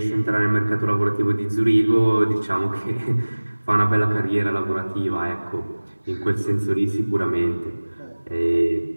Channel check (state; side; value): inverted; both; correlation -1.00